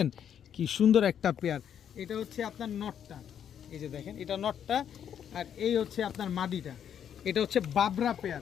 কি সুন্দর একটা পেয়ার। এটা হচ্ছে আপনার নটটা, এই যে দেখেন এটা নটটা, আর এই হচ্ছে আপনার মাদিটা। এটা হচ্ছে বাবরা পেয়ার,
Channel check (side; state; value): right; quieter; 8.9 dB